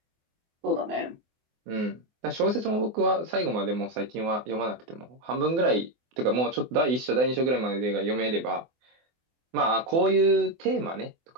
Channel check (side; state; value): left; late; 24 ms